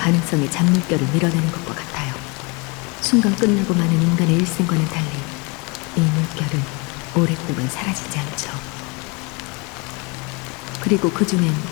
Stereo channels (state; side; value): quieter; right; 29.5 dB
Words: 잔물결을 밀어내는 것과 같아요. 순간 끝나고 마는 인간의 일생과는 달리 이 물결은 오랫동안 사라지지 않죠. 그리고 그 중엔